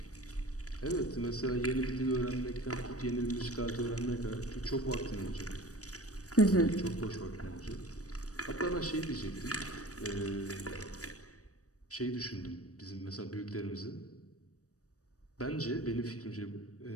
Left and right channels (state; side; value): late; right; 0.66 ms